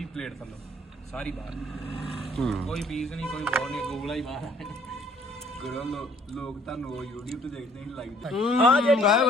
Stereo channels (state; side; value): normal; both; correlation 0.59